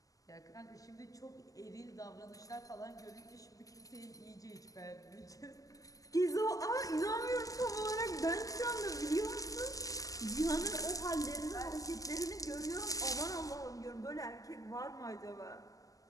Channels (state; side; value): late; right; 0.17 ms